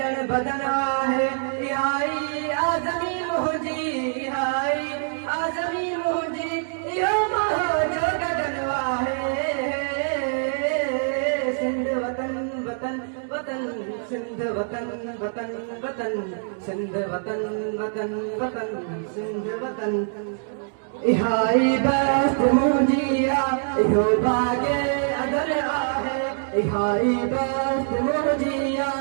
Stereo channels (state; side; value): silent; left; digital silence